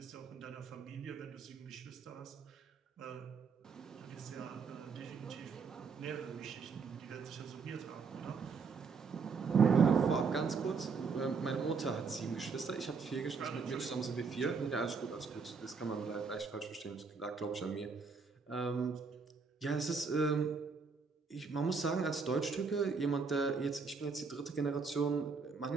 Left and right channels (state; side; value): quieter; left; 5.1 dB